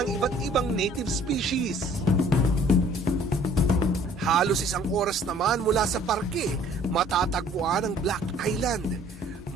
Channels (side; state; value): both; normal; correlation 0.55